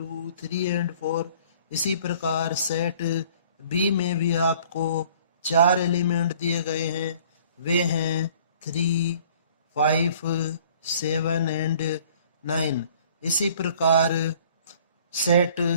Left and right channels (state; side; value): inverted; both; correlation -0.54